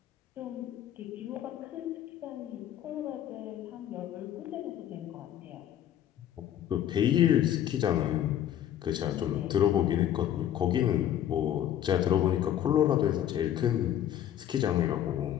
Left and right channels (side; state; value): right; quieter; 11.0 dB